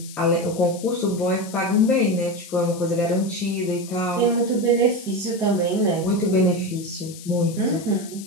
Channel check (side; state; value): left; noise; hiss, 16 dB below the sound